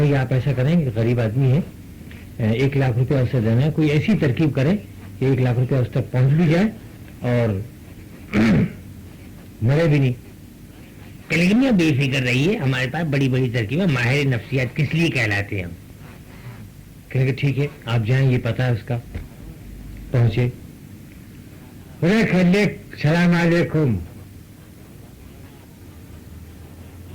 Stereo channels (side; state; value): both; identical; correlation 1.00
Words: आप ऐसा करेंगे, गरीब आदमी है, 1 लाख रुपया उससे देना है, कोई ऐसी तरकीब करें कि 1 लाख रुपया उस तक पहुंच भी जाए और मरे भी नहीं। कलीमिया बेफिक्र रही है, हमारे पास बड़ी बड़ी तरकीब है, माहिर नफ्सियात किस लिए कहलाते हैं हम। कहेंगे ठीक है आप जाएं, ये पता है उसका। पहुंचे, सलाम अलैकुम।